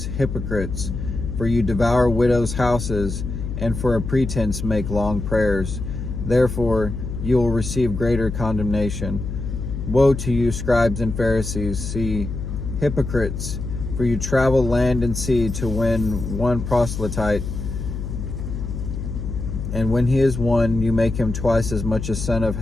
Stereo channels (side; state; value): left; noise; hum, 6 dB below the sound